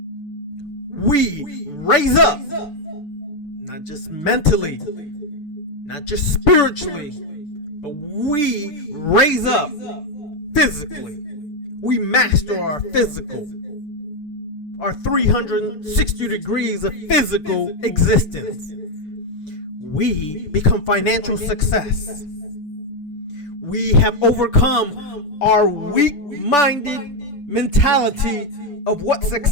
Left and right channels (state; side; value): late; right; 6.9 ms